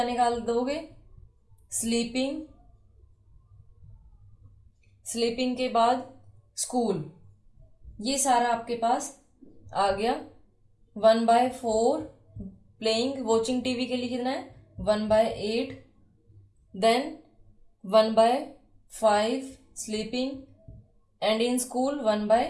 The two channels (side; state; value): both; identical; correlation 1.00